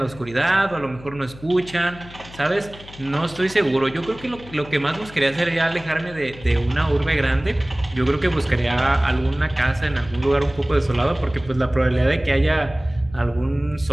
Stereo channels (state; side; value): noise; left; hum, 18 dB below the sound